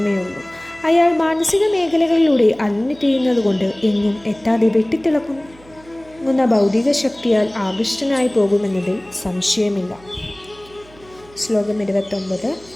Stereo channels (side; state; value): right; noise; hum, 25 dB below the sound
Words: ഉള്ളൂ. അയാൾ മാനസിക മേഖലകളിലൂടെ അലഞ്ഞു തിരിയുന്നതുകൊണ്ട് എങ്ങും എത്താതെ വെട്ടിത്തിളങ്ങുന്ന ഭൗതിക ശക്തിയാൽ ആകൃഷ്ടനായി പോകുമെന്നതിൽ സംശയമില്ല. ശ്ലോകം 29.